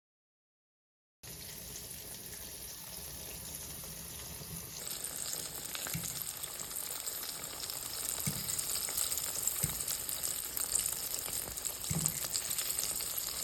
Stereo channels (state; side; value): identical; both; correlation 1.00